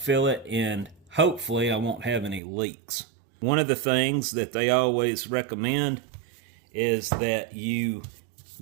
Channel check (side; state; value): left; drops out; at 2.4 s